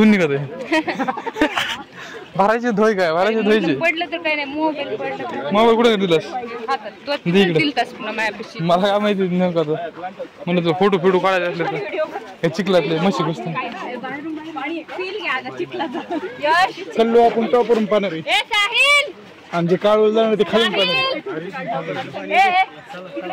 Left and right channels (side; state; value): both; identical; correlation 1.00